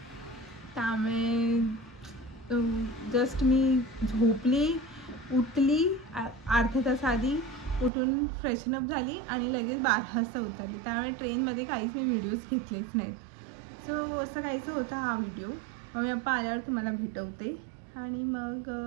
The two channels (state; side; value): drops out; left; at 7.9 s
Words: त्यामुळे जस्ट मी झोपली, उठली अर्धा तास आधी, उठून फ्रेशनअप झाली आणि लगेच 12 वाजता उतरली. त्यामुळे ट्रेनमध्ये काहीच मी व्हिडिओज घेतलेच नाहीत. सो असं काहीचं होता हा व्हिडिओ. मग मी पप्पा आल्यावर तुम्हाला भेटवते. आणि मग